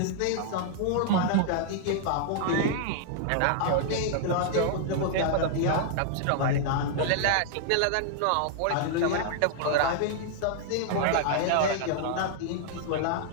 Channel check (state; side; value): different; both; correlation -0.01